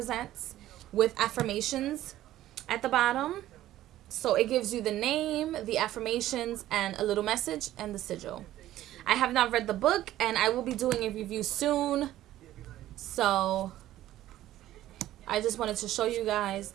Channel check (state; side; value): quieter; left; 13.9 dB